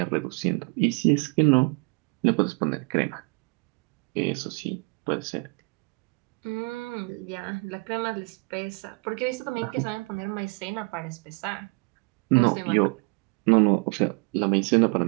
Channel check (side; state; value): left; quieter; 32.2 dB